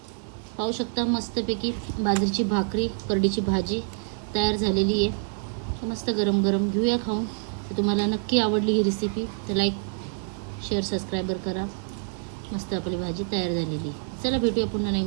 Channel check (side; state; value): left; silent; digital silence